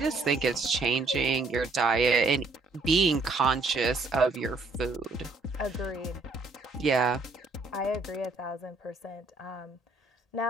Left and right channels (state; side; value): quieter; left; 3.5 dB